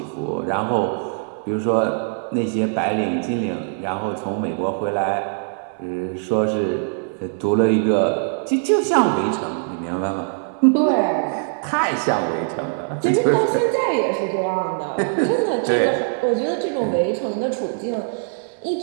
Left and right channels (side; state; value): left; silent; 60 dB below the other